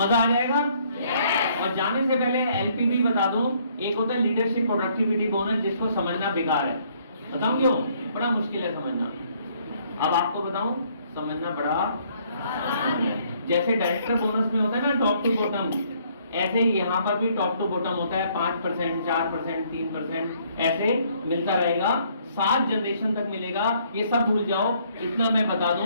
आ जाएगा। और जाने से पहले एलपीबी बता दूं, एक होता है लीडरशिप प्रोडक्टिविटी बोनस, जिसको समझना बेकार है। बताऊं क्यों? बड़ा मुश्किल है समझना। अब आपको बताऊं, समझना बड़ा जैसे डायरेक्टर बोनस में होता है ना टॉप टू बॉटम, ऐसे ही यहाँ पर भी टॉप टू बॉटम होता है। 5%, 4%, 3% ऐसे मिलता रहेगा, 7 जनरेशन तक मिलेगा। ये सब भूल जाओ, इतना मैं बता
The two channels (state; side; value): inverted; both; correlation -0.65